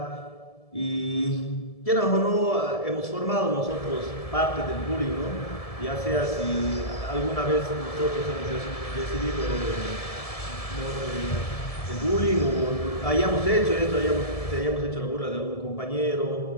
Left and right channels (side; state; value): right; late; 1.7 ms